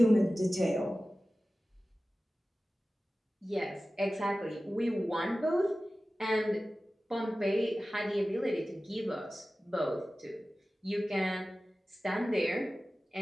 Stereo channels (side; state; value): both; normal; correlation 0.96